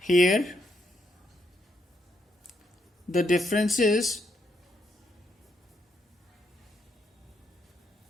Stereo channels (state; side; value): normal; both; correlation 0.77